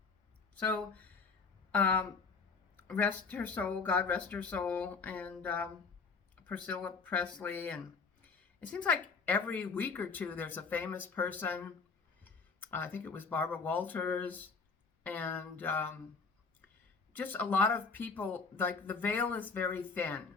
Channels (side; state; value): right; quieter; 4.8 dB